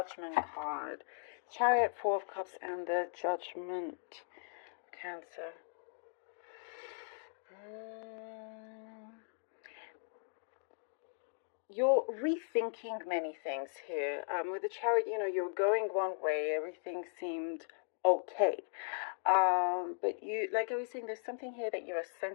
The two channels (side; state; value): right; silent; digital silence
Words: card. Chariot, Four of Cups, and the Judgment. Cancer. You're rethinking many things here. With the Chariot, you're going one way, everything seemed okay. But you, like I was saying, there's something here that you're